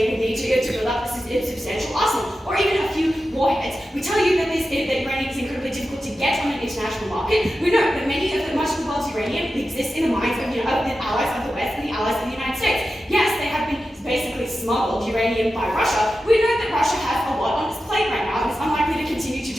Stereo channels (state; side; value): normal; both; correlation 0.92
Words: would need to build up a substantial arsenal, or even a few warheads. We tell you that uranium is incredibly difficult to get on an international market. We know that much of the world's uranium exists in the minds of the allies of the West and the allies of the United States. Yes, they have been basically smuggled uranium by Russia. We know that Russia has a lot on its plate right now and is unlikely to continue to